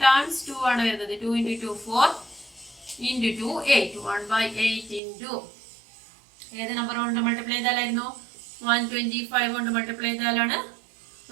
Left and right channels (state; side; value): drops out; left; at 5.0 s